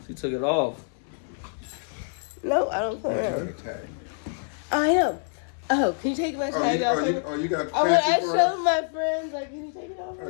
She took it off. No, I don't play Oh, you around. got a tag. I am. Oh, can you take my tag off? You got I fancy for us? showed my friends, like, can you take it off? Oh,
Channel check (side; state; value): right; silent; digital silence